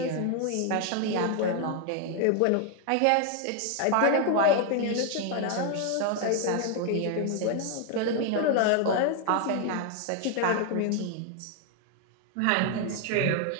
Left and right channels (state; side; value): different; both; correlation 0.01